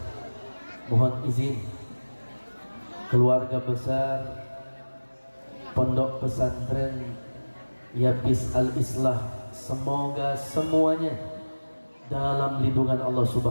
mohon izin. Keluarga besar Pondok Pesantren Yapis Al-Islah, semoga semuanya dalam lindungan Allah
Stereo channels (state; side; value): inverted; both; correlation -1.00